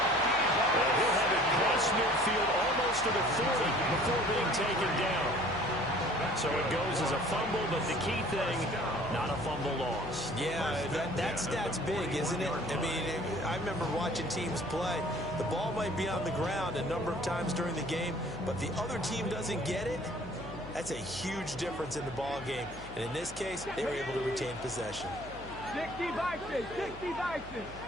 And he'll have it cross midfield almost to the 40 before being taken down. So it goes as a fumble, but the key thing, not a fumble loss. Yeah, that stat's big, isn't it? I mean, I remember watching teams play. The ball might be on the ground a number of times during the game, but the other team doesn't get it. That's a huge difference in the ball game. And in this case, they were able to retain possession. 60 Vikings, 60 Vikings.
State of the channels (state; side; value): noise; left; hum, 15 dB below the sound